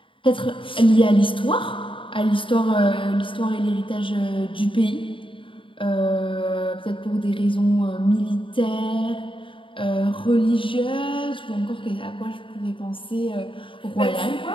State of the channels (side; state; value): right; late; 0.25 ms